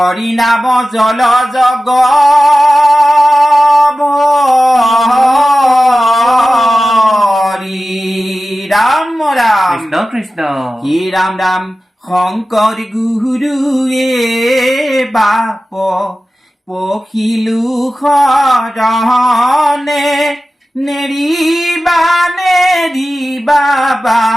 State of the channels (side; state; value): both; normal; correlation 0.95